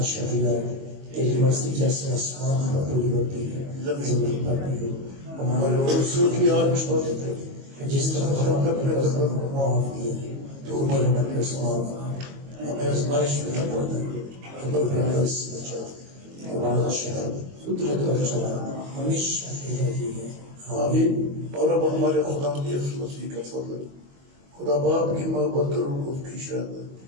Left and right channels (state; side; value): late; left; 22 ms